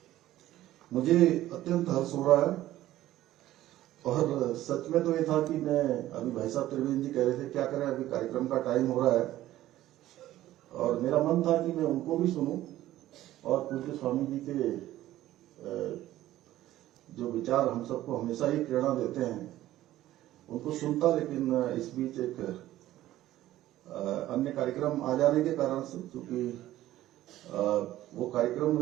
मुझे अत्यंत हर्ष हो रहा है। और सच में तो ये था कि मैं अभी भाई साहब त्रिवेंद्र जी कह रहे थे क्या करें, अभी कार्यक्रम का टाइम हो रहा है, और मेरा मन था कि मैं उनको भी सुनूं और पूज्य स्वामी जी के जो विचार हम सबको हमेशा ही प्रेरणा देते हैं उनको सुनता, लेकिन इस बीच एक अन्य कार्यक्रम आ जाने के कारण से, क्योंकि वो कार्यक्रम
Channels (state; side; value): quieter; left; 14.5 dB